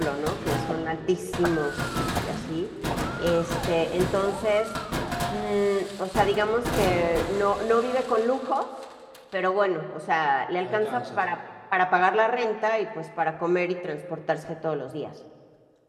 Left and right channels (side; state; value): both; identical; correlation 1.00